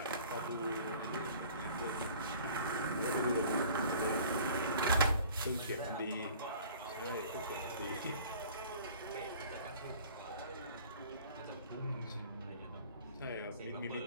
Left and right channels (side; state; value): both; inverted; correlation -0.48